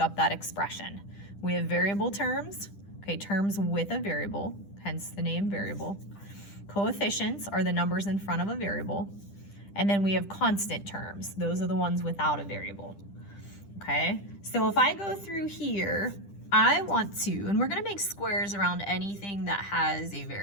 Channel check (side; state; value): right; late; 10 ms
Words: that expression. We have variable terms, okay, terms with a variable, hence the name variable. Coefficients are the numbers in front of a variable. And then we have constant terms. Those are the ones without a variable. Okay, so if I go through here, I want to, and we're gonna make squares around anything that has a